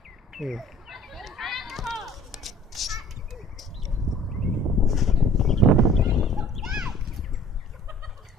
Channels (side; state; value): both; normal; correlation 0.50